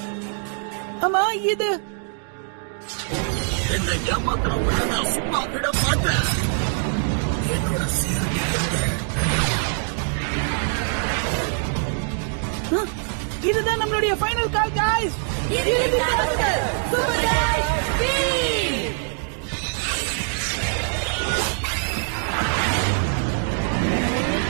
அம்மா இது என்னை ஏமாத்துறவங்களை நான் சும்மா விட மாட்டேன். இதுதான் நம்மளுடைய ஃபைனல் கால் गाइस.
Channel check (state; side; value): silent; left; 58 dB below the other